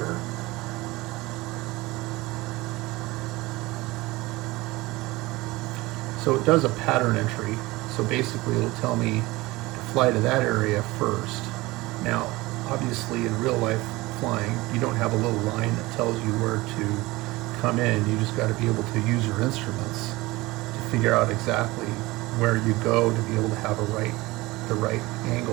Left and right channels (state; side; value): quieter; left; 20.8 dB